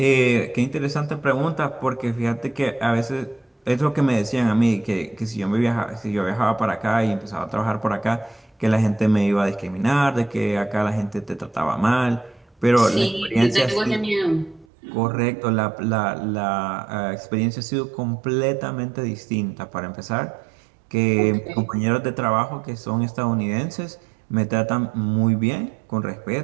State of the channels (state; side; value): drops out; left; at 14.7 s